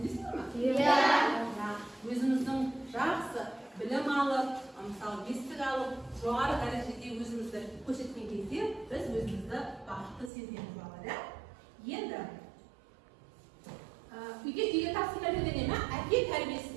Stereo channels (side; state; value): left; drops out; at 10.3 s